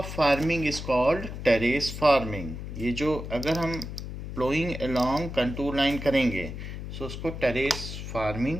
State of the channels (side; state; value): left; noise; hum, 8 dB below the sound